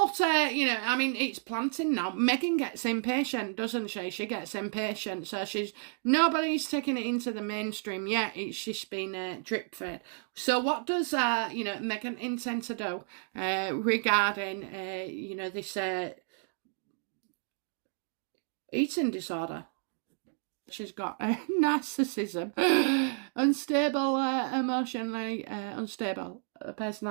you know, I mean, it's planting now. Meghan gets impatient, doesn't she? She gets impatient. So nobody's taking it into the mainstream yet. It's just been drip fed. So what does, you know, Meghan intend to do regarding, you know, this eating disorder? She's got narcissism, unstable, emotionally unstable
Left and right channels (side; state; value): left; silent; 57 dB below the other